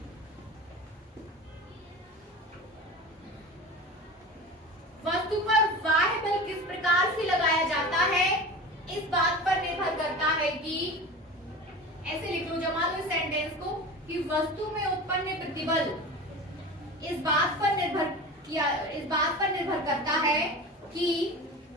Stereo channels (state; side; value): normal; both; correlation 0.32